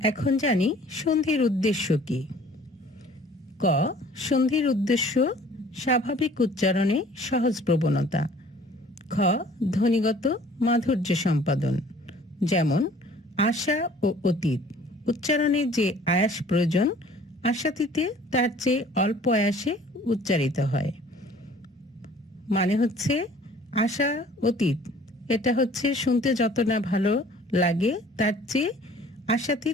এখন জানি সন্ধির উদ্দেশ্য কি। ক, সন্ধির উদ্দেশ্য স্বাভাবিক উচ্চারণে সহজ প্রবণতা। খ, ধ্বনিগত মাধুর্য সম্পাদন। যেমন, আশা ও অতীত উচ্চারণে যে আয়াস প্রয়োজন, আশাতীতে তার চেয়ে অল্প আয়াসে উচ্চারিত হয়। মানে হচ্ছে, আশা অতীত এটা হচ্ছে শুনতে যত না ভালো লাগে, তার চেয়ে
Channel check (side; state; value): both; normal; correlation 0.52